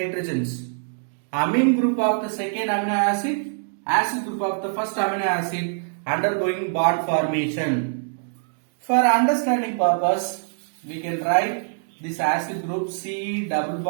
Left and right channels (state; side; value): silent; left; digital silence